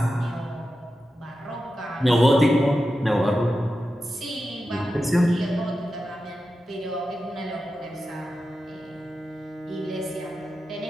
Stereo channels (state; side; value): normal; both; correlation 0.91